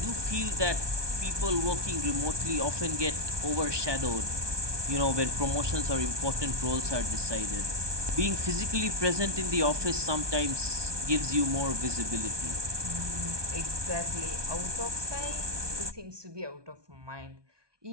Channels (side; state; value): left; late; 1.2 ms